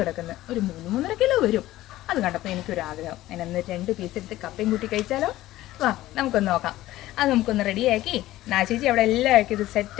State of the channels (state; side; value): quieter; right; 15.7 dB